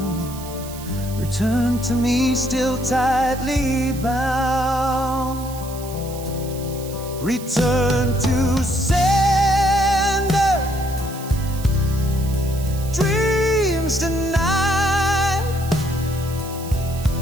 Return to me still tightly bound. Return to sender, dreams denied,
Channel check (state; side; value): noise; right; hiss, 15 dB below the sound